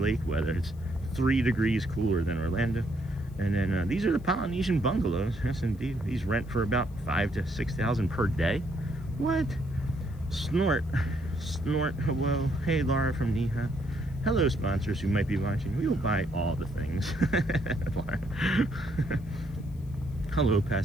weather. It's 3 degrees cooler than Orlando. And then these are the Polynesian bungalows. Yes, indeed. These rent for about $5,000 to $6,000 per day. What? Snort. Hello. Hey, Laura from Neha. Hello, sponsors who might be watching. We will buy all the things. Hello,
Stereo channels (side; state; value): left; noise; hiss, 30 dB below the sound